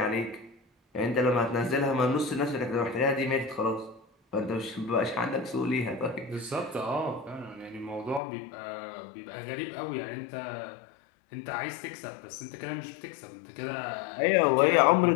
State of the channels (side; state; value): right; drops out; at 8.2 s